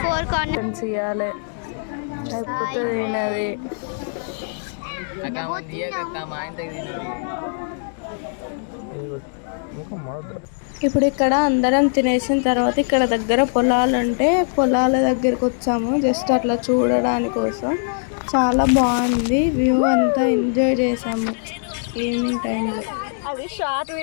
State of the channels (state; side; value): silent; right; digital silence